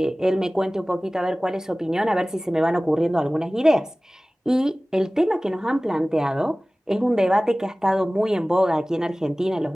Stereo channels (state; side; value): normal; both; correlation 0.98